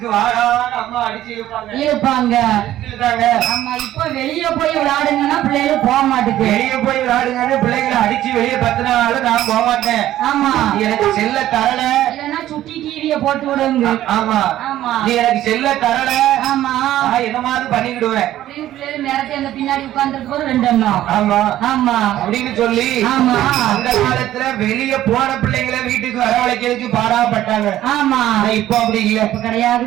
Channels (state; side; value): quieter; left; 13.3 dB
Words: வாடான்னு அம்மா அடிச்சு இழுப்பாங்க. இப்ப வெளியே போய் விளையாடுங்கன்னா பிள்ளைகள் போக மாட்டேங்க. வெளியே போய் விளையாடுங்க பிள்ளைகளை அடிச்சு வெளியே பத்தினாலும் நான் போக மாட்டேன். எனக்கு செல்ல தரல இல்லன்னா சுட்டி டிவிய போட்டு விடுங்க. நீ எனக்கு செல்ல தரல என்ன மாதிரி பண்ணிக்கிடுவேன் பின்னாடி உட்கார்ந்து 2 எண்ணம் அப்படின்னு சொல்லி அந்த காலத்துல வெளியே போன பிள்ளைங்களை வீட்டுக்கு வரவழைக்கிறதுக்கு பாடாப்பட்டாங்க. இப்ப அப்படி இல்ல.